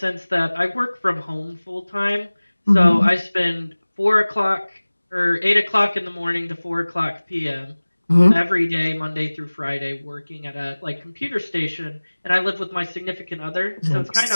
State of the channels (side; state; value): both; inverted; correlation -1.00